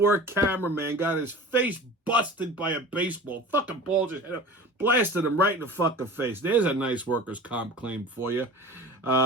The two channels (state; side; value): normal; both; correlation 0.37